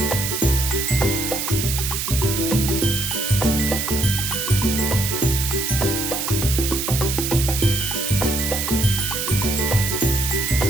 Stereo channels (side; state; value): right; noise; hiss, 2 dB below the sound